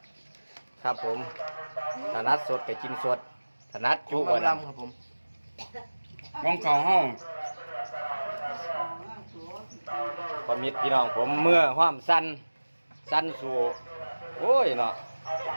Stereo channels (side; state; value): both; inverted; correlation -1.00